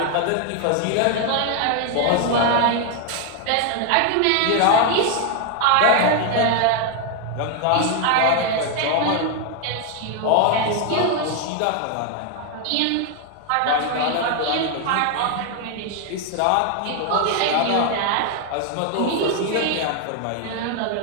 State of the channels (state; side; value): different; both; correlation 0.01